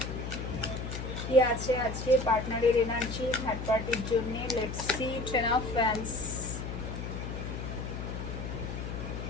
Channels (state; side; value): noise; left; hum, 6 dB below the sound